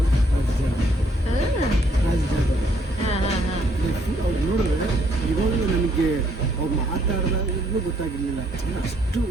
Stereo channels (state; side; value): normal; both; correlation 0.68